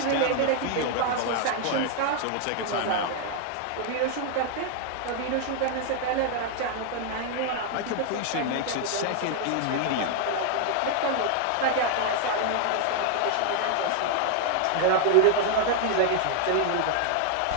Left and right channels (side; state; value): both; different; correlation 0.00